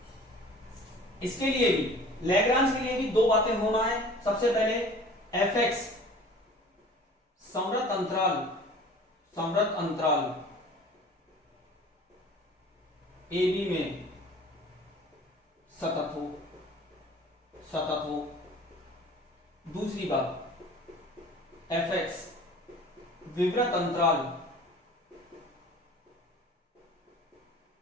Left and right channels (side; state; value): both; normal; correlation 0.45